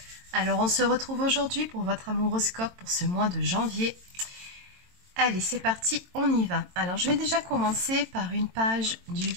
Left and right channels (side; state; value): left; late; 22 ms